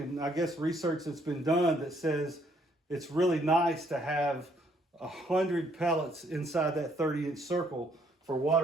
I guess research that's been done that says it's really nice to have 100 pellets inside that 30-inch circle for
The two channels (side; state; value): both; normal; correlation 0.68